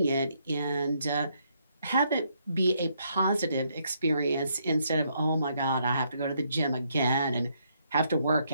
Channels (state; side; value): inverted; both; correlation -0.73